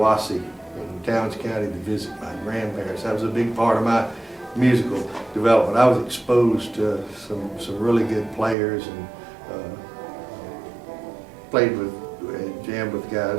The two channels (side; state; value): left; drops out; at 8.6 s